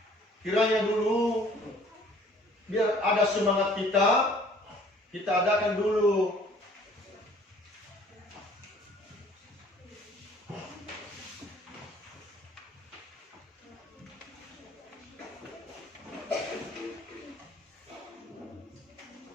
kiranya dulu biar ada semangat kita adakan dulu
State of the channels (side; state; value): both; normal; correlation 0.55